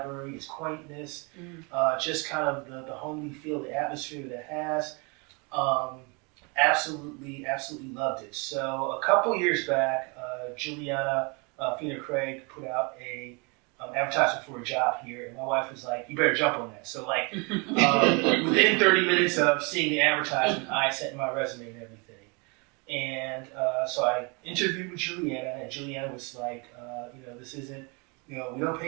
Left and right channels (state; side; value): quieter; left; 31.3 dB